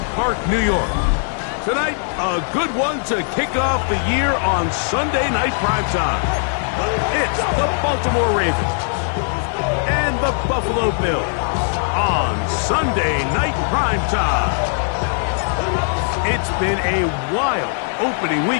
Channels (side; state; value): right; silent; 65 dB below the other